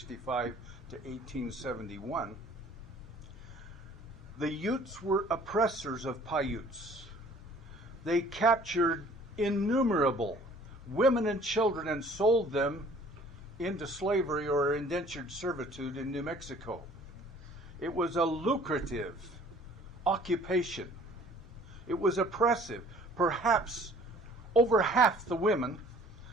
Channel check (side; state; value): both; normal; correlation 0.53